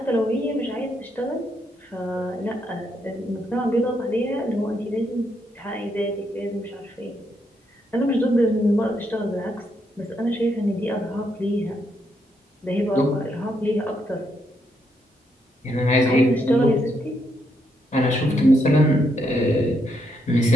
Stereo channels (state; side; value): normal; both; correlation 0.77